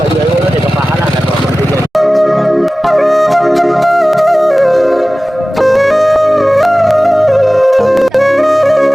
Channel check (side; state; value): both; normal; correlation 0.97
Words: આવ્યો નથી પપ્પા હાલા કરવા મંડી જાય.